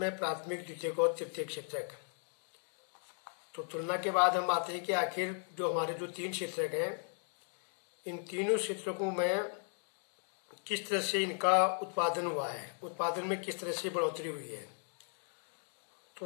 प्राथमिक, द्वितीयक और तृतीयक क्षेत्र। तो तुलना के बाद हम आते हैं कि आखिर जो हमारे जो 3 क्षेत्र हैं, इन तीनों क्षेत्रों में किस तरह से इनका उत्पादन हुआ है, उत्पादन में किस तरह से बढ़ोतरी हुई है। तो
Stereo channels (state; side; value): silent; right; 53 dB below the other